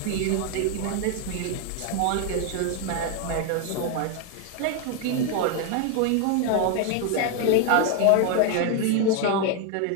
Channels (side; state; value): both; different; correlation 0.01